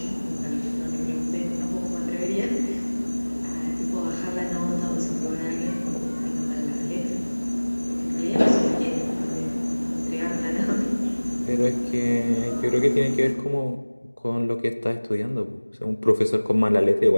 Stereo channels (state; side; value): inverted; both; correlation -1.00